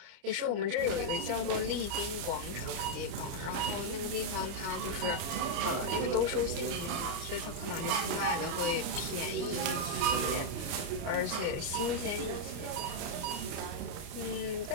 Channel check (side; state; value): left; late; 29 ms